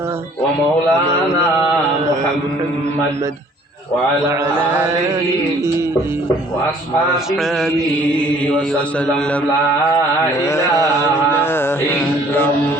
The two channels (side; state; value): both; normal; correlation 0.57